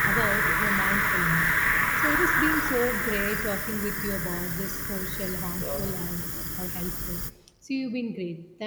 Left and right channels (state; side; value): identical; both; correlation 1.00